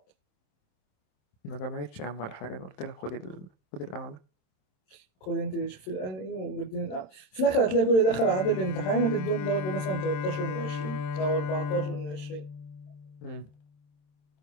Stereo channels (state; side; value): late; right; 27 ms